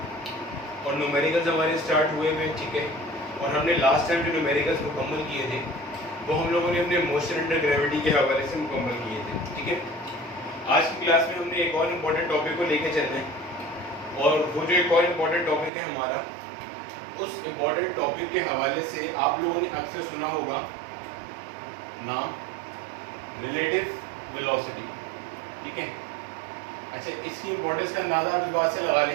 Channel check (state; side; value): drops out; left; at 15.7 s